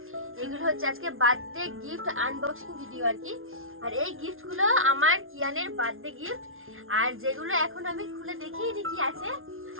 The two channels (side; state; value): left; late; 0.60 ms